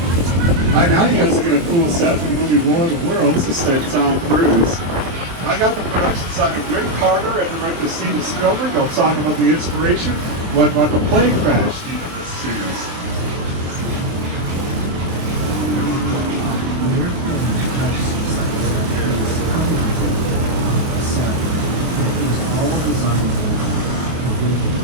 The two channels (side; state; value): left; late; 23 ms